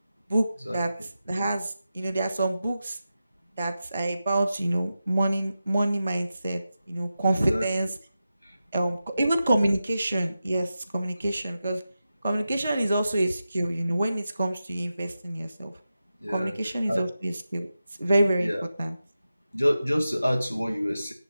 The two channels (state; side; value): inverted; both; correlation -0.92